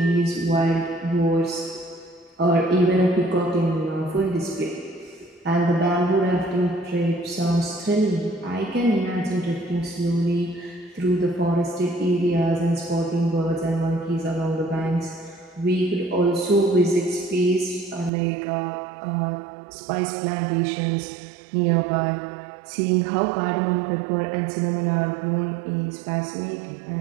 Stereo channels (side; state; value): left; drops out; at 18.1 s